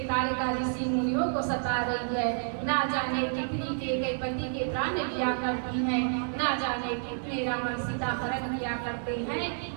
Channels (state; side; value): silent; left; digital silence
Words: तालिका ऋषि मुनियों को सता रही है ना जाने कितनी के पति के प्राण लिया करती हैं ना जाने कितने रावण सीता हरण किया करते हैं।